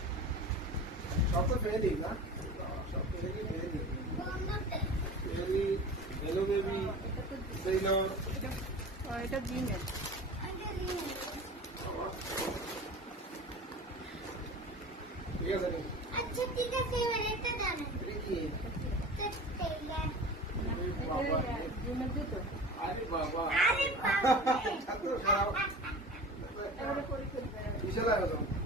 সব তো ফেলে দিই না সব ফেলে দিই বেবি হ্যালো বেবি সেইলর এটা ডিমের। ঠিক আছে নি আচ্ছা ঠিক আছে এবার এটা দাও না এটা কি বাবা ডিমের জুতো। আরে বাবা আরে বাবা ছাত্র খারাপ এবারে পরে করবে। বিশাল আয়োজন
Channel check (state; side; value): normal; both; correlation 0.36